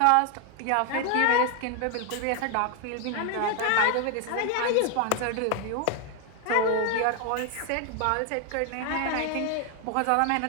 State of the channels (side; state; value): both; different; correlation 0.01